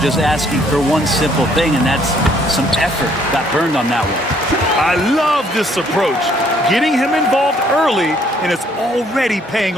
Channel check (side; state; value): both; normal; correlation 0.64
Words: asking for one simple thing, and that's some effort. Got burned on that one. I love this approach. Getting him involved early, and it's already paying